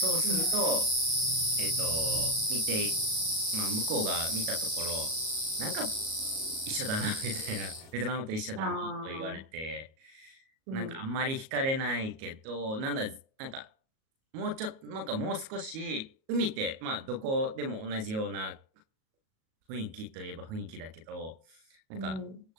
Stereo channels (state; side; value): late; left; 37 ms